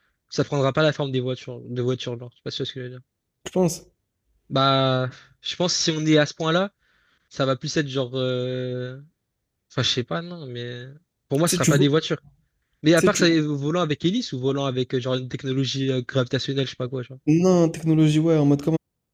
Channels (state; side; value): identical; both; correlation 1.00